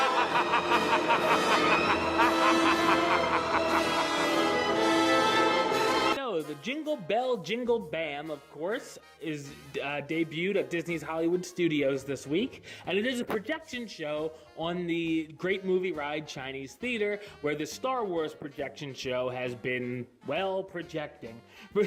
The Jingle Bell, Jingle Bam, of course, is debuted at Disney's Hollywood Studios this week, and it is a projection show on the Great Movie Ride Chinese Theater, where the Star Wars projection show has been, well, projecting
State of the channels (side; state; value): both; identical; correlation 1.00